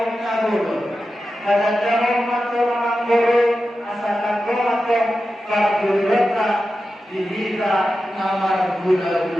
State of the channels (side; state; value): both; normal; correlation 0.91